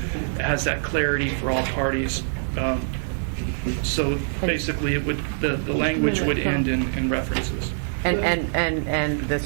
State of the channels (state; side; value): silent; left; digital silence